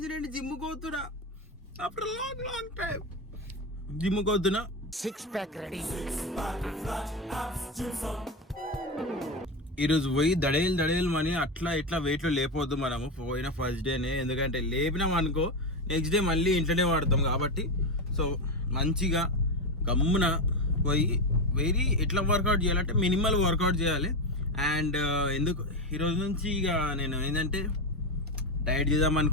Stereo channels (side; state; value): both; normal; correlation 0.15